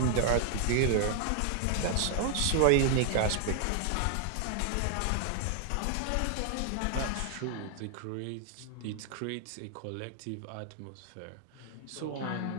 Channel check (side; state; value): both; different; correlation 0.00